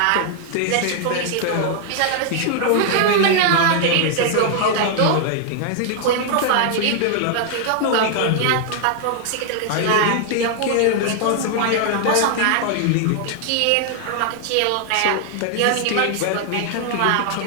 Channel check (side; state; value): both; different; correlation 0.00